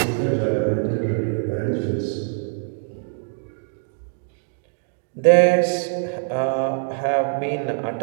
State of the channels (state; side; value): silent; left; 63 dB below the other